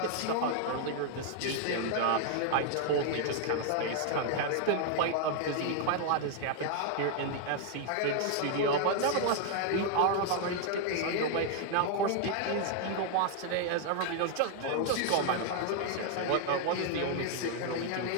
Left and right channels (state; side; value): different; both; correlation 0.00